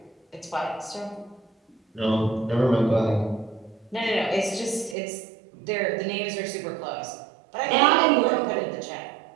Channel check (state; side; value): drops out; left; at 5.0 s